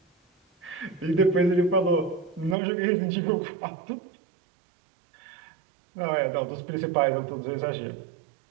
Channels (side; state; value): left; drops out; at 2.6 s